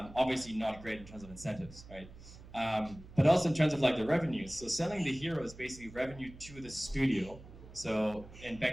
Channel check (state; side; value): noise; right; hum, 18 dB below the sound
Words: not great in terms of incentives, right? But also in terms of like the revenues. So selling the hero is basically revenue to the studio. So, and